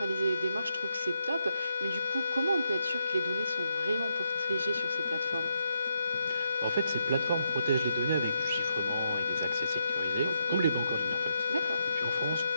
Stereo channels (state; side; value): inverted; both; correlation -0.80